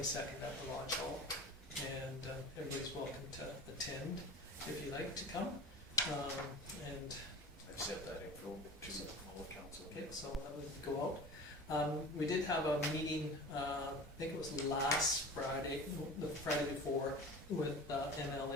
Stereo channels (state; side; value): normal; both; correlation 0.36